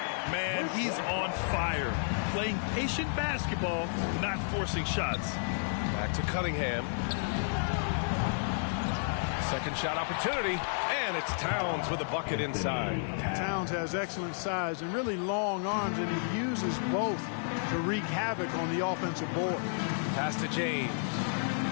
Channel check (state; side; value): silent; right; digital silence